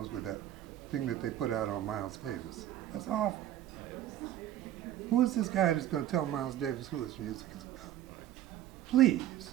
with that thing that they put out on Miles Davis. That's awful. Who is this guy that's going to tell Miles Davis who his music is about?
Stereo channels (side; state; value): left; quieter; 12.3 dB